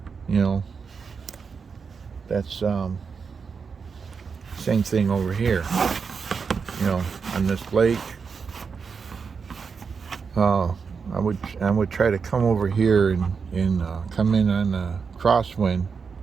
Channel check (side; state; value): left; quieter; 5.6 dB